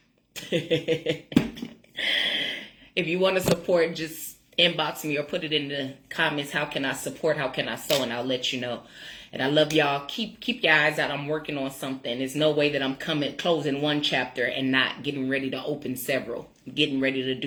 If you want to support, just inbox me or put it in the comments. How can I support? How can I sow? And I'll let you know. And I love y'all. Keep your eyes out. I'm working on something. There's no way that I'm closing one chapter and not getting ready to open several. I'm getting ready to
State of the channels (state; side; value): identical; both; correlation 1.00